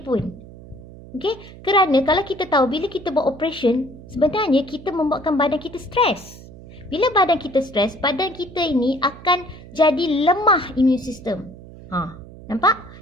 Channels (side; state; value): right; noise; hum, 18 dB below the sound